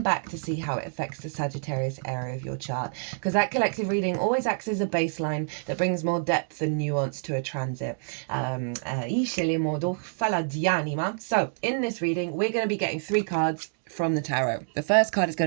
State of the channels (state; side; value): silent; left; digital silence